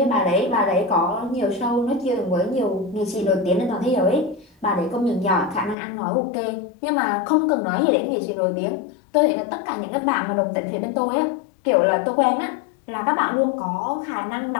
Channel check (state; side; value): drops out; right; at 5.8 s